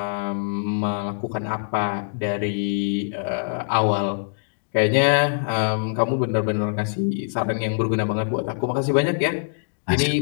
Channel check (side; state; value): right; silent; digital silence